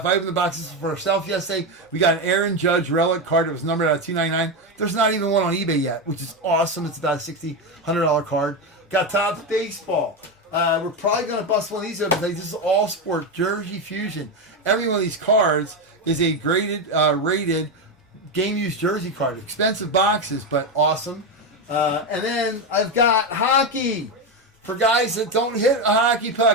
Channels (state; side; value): normal; both; correlation 0.12